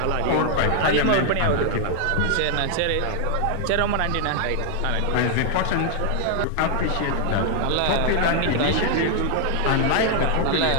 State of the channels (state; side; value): different; both; correlation 0.00